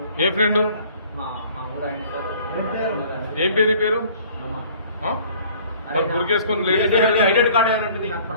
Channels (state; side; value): inverted; both; correlation -0.53